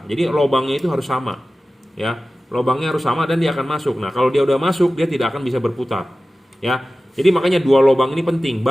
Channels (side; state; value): both; normal; correlation 0.96